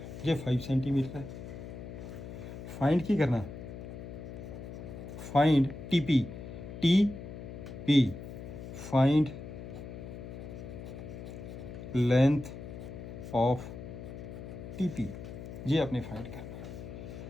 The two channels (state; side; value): noise; left; hum, 10 dB below the sound